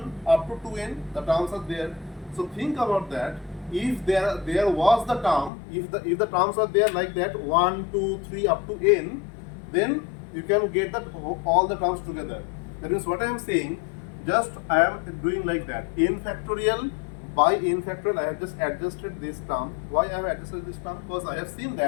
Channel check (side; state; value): right; drops out; at 5.5 s